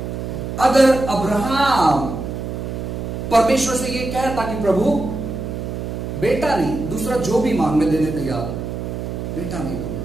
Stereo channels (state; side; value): noise; right; hum, 5 dB below the sound